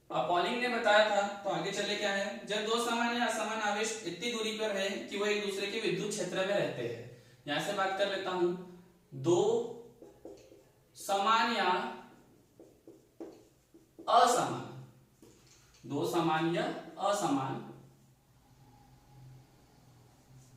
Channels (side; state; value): both; identical; correlation 1.00